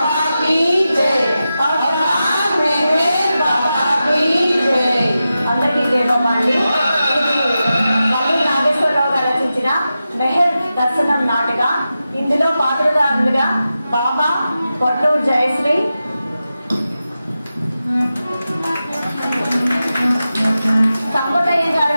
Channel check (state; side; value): inverted; both; correlation -0.92